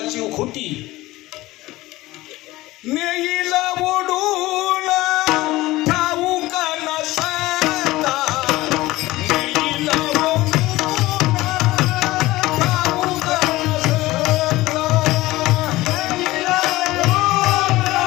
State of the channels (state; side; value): quieter; right; 18.4 dB